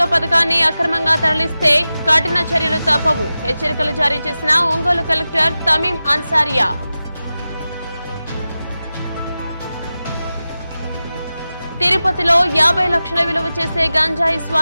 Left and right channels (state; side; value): inverted; both; correlation -0.94